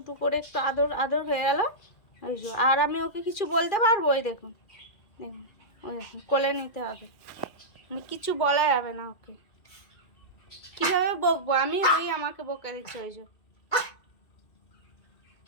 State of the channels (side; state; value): right; late; 2.3 ms